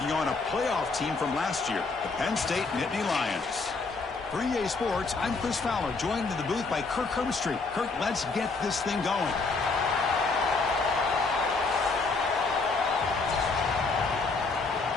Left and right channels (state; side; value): quieter; right; 4.0 dB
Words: on a playoff team from last year, the Penn State Nittany Lions. For EA Sports, I'm Chris Fowler, joined in the booth by Kirk Herbstreit. Kirk, let's get this thing going.